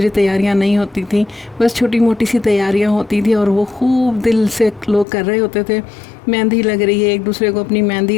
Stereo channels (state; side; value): drops out; right; at 5.1 s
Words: तैयारियां नहीं होती थी, बस छोटी मोटी सी तैयारियां होती थी और वो खूब दिल से लोग कर रहे होते थे। मेहंदी लग रही है, एक दूसरे को अपनी मेहंदी